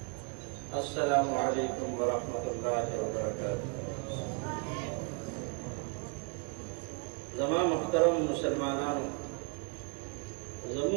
अस्सलामु अलैकुम व रहमतुल्लाहि व बरकातुहू। जमा मुहतरम मुसलमानान,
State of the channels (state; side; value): quieter; left; 36.7 dB